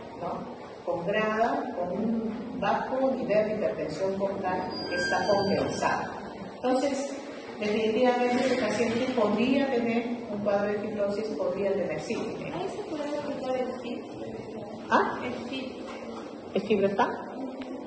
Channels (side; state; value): both; identical; correlation 1.00